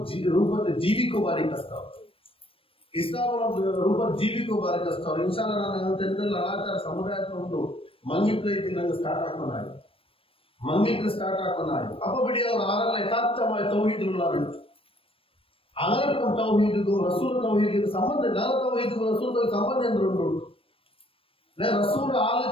ರೂಪದ ಜೀವಿಕೋ ಬಾರಿ ಕಷ್ಟ ಇಸ್ಲಾಂ ರೂಪದ ಜೀವಿಕೋ ಬಾರಿ ಕಷ್ಟ ಇನ್ಶಾಲ್ಲ ನಾನು ತೆಂದಲ್ಲಿ ಅನಾಚಾರ ಸಮುದಾಯದ ಒಂದು ಮಂಗಿತ್ರ ಐತಿ ನಂಗೆ ಸ್ಟಾರ್ಟ್ ಹಾಕೊಂಡಾಯ್ತು ಮಂಗಿತ್ರ ಸ್ಟಾರ್ಟ್ ಹಾಕೊಂಡಾಯ್ತು ಅಪ್ಪ ಬಿಡಿ ಅವ್ರು ಆರಲ್ಲ ಯಥಾರ್ಥമായ ತೌಹೀದುಲ್ಲಾಹುಂಟು അങ്ങനത്തെ തൗഹീദും റസൂൽ തൗഹീദിനും സംബന്ധം നല്ല തൗഹീദും റസൂൽ സംബന്ധം എന്തുണ്ട് റസൂൽ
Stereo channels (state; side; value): late; right; 0.27 ms